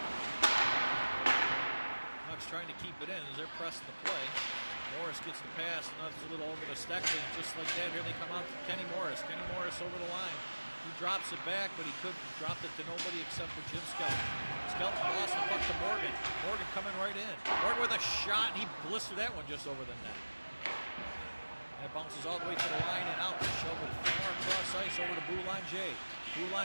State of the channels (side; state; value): both; inverted; correlation -1.00